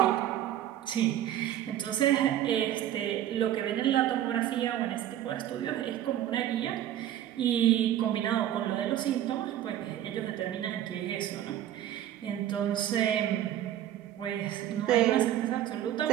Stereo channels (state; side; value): quieter; left; 11.8 dB